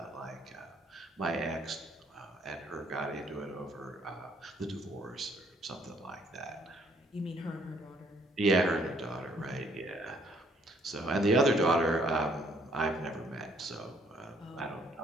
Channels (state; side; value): normal; both; correlation 0.65